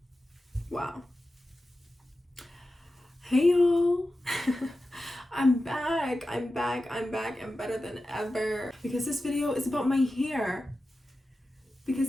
Wow. Hey y'all. I'm back. I'm better than ever. Because this video is about my hair.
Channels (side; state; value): both; normal; correlation 0.93